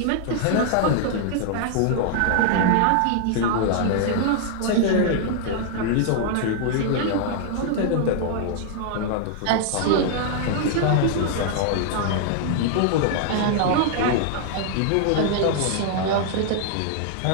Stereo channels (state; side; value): different; both; correlation -0.01